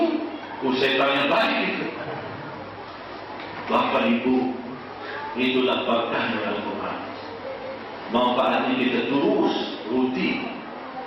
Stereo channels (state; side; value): identical; both; correlation 1.00